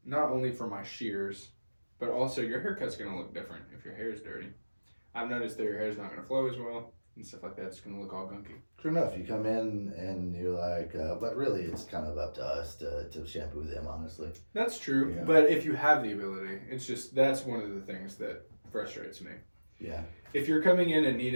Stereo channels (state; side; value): inverted; both; correlation -1.00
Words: Not only for my shears, but also your haircut's gonna look different if your hair is dirty. I've noticed that your hair's not gonna flow as well and stuff like that. It's gonna look all gunky. True enough. You come in and you're like, but really, it's kind of up to us to shampoo them, honestly. That's true. Yeah. But if you have the ability, it's just that's one of the things that frustrates me. Yeah. If you're coming in and